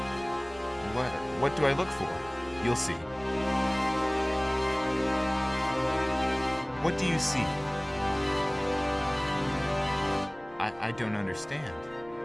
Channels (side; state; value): left; noise; rumble, 25 dB below the sound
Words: What do I look for?" "You'll see." "What do you see?" I don't understand."